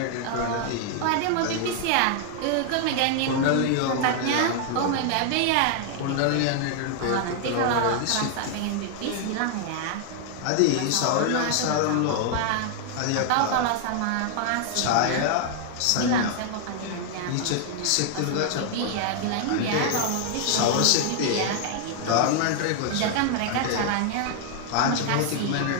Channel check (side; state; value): both; different; correlation 0.00